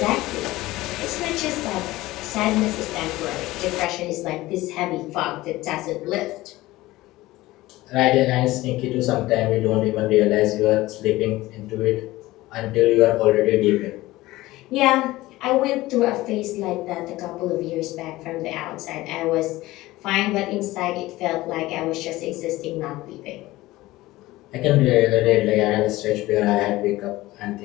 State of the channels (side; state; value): right; quieter; 18.1 dB